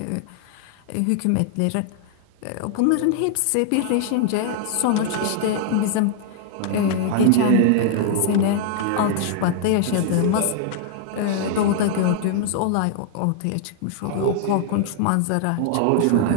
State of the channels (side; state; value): both; different; correlation -0.01